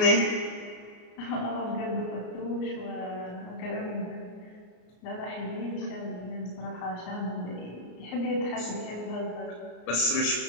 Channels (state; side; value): late; right; 33 ms